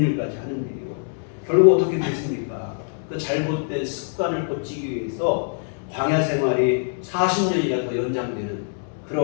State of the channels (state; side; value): silent; right; digital silence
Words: 일까지 하는 일이요. 결국 어떻게 됐습니까? 그 잘못된 습관을 고치기 위해서 광야 생활이 40년이나 더 연장되는